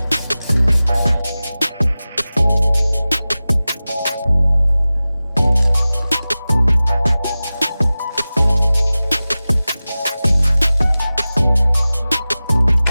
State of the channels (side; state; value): both; inverted; correlation -0.97